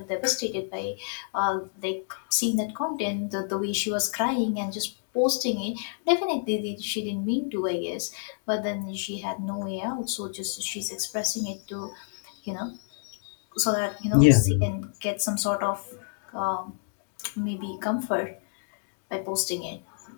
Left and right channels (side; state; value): right; silent; digital silence